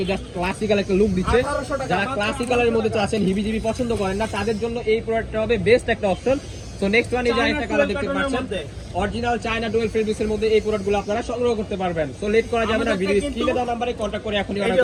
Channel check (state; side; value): identical; both; correlation 1.00